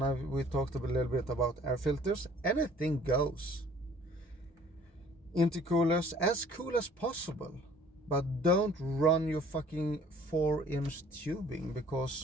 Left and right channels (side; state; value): both; normal; correlation 0.55